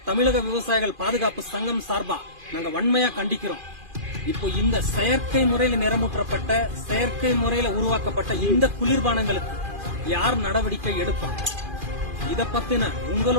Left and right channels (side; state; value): left; late; 2.4 ms